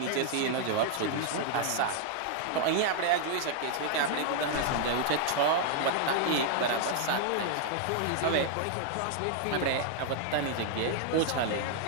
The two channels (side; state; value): both; different; correlation 0.00